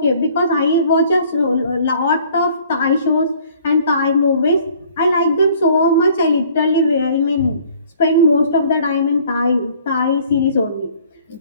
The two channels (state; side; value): inverted; both; correlation -0.56